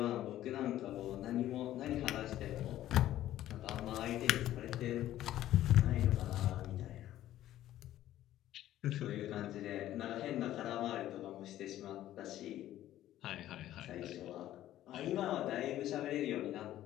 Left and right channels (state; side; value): quieter; right; 13.4 dB